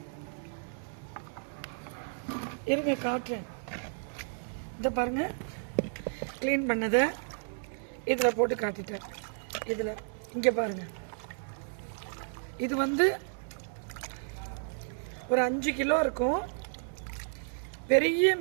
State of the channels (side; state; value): left; silent; digital silence